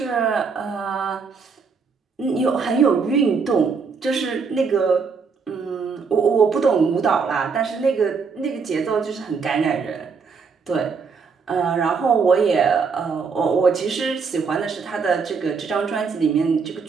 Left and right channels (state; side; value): quieter; left; 5.3 dB